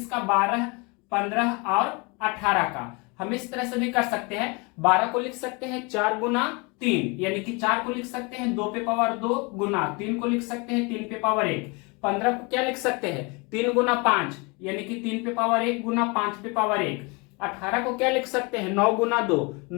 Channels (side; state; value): right; quieter; 28.9 dB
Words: 12, 15 और 18 का। हम इस तरह से भी कर सकते हैं। 12 को लिख सकते हैं 4 गुना 3, यानी कि 4 को लिख सकते हैं 2 पे पावर 2 गुना 3 को लिख सकते हैं 3 पे पावर 1। 15 को क्या लिख सकते हैं? 3 गुना 5, यानी कि 3 पे पावर 1 गुना 5 पे पावर 1। 18 को क्या लिख सकते हैं? 9 गुना 2।